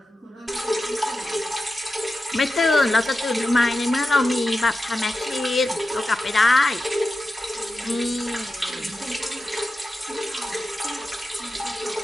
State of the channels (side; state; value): both; normal; correlation 0.91